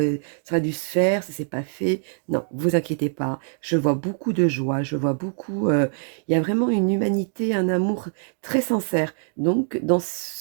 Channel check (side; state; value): left; silent; digital silence